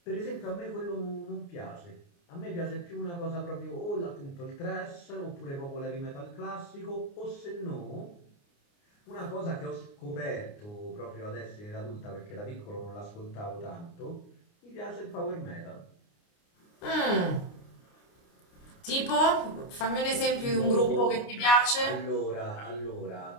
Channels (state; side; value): late; right; 29 ms